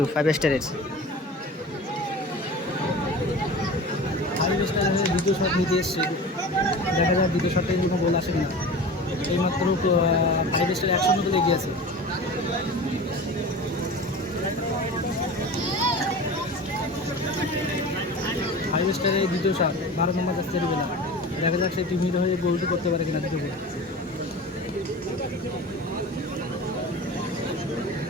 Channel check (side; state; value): both; normal; correlation 0.35